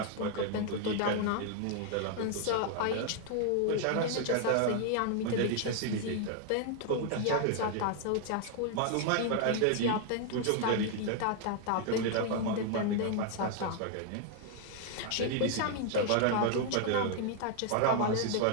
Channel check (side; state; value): both; different; correlation 0.00